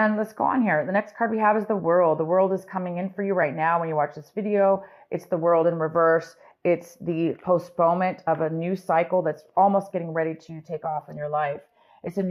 let's go on here. The next card we have is the World. The World is coming in for you right now when you watch this video. It's the World in reverse. It's the postponement of a new cycle that's almost getting ready to take off in your life. It's a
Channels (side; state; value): both; identical; correlation 1.00